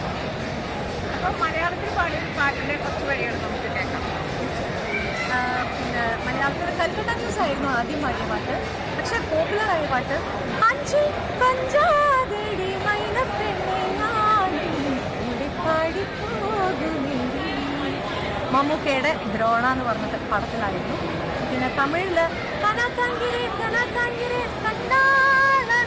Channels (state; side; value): identical; both; correlation 1.00